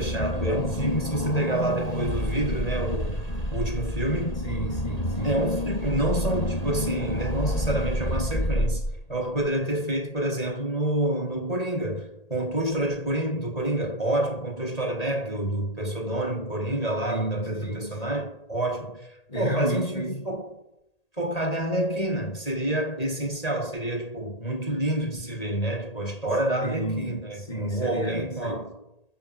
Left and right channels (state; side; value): late; right; 1.8 ms